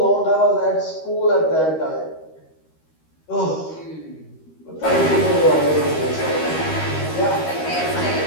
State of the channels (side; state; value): right; late; 13 ms